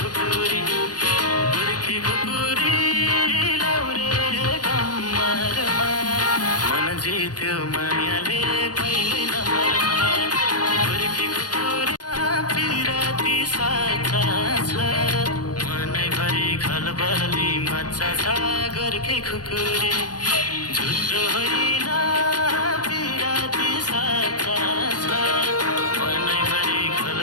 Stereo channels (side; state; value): right; late; 0.69 ms